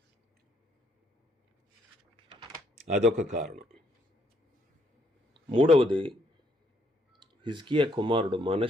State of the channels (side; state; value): both; normal; correlation 0.70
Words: అదొక కారణం. మూడవది, హిజ్కియా కుమారుడు